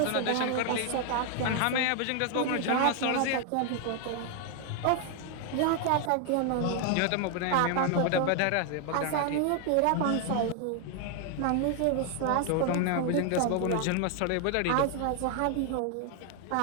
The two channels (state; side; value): different; both; correlation 0.00